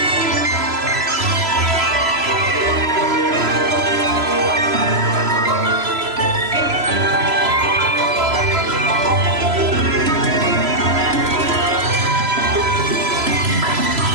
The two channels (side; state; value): left; late; 3.0 ms